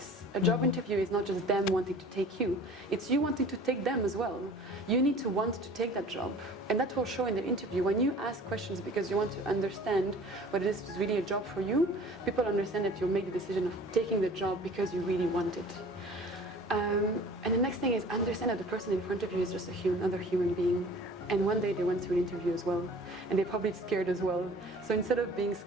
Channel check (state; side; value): normal; both; correlation 0.46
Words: A job interview is not just them wanting to take you, it's you wanting to take them as well. You need to want to take that job, and that will show in the interview. When you ask questions because you want to understand whether this is really a job for you, people understand that you'll make the decision of taking the job because you really want it. And the next thing is understand that the person in front of you is just another human being. And one day they went through an interview as well, and they're probably scared as well. So instead of being